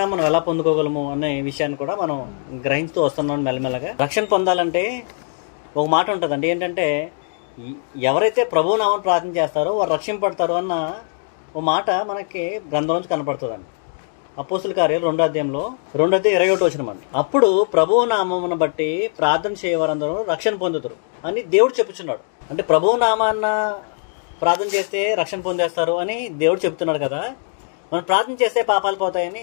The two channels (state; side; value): silent; right; 65 dB below the other